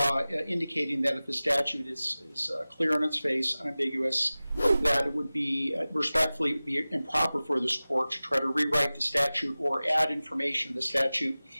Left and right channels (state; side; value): inverted; both; correlation -0.97